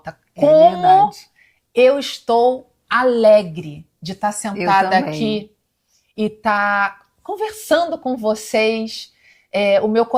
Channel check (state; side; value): identical; both; correlation 1.00